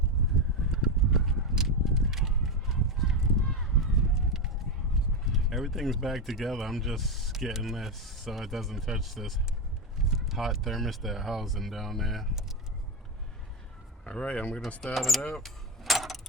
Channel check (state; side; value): normal; both; correlation 0.11